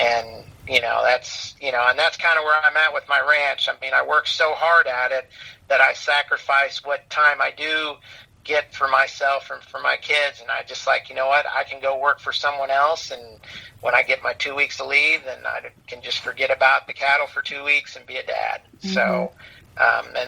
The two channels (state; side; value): identical; both; correlation 1.00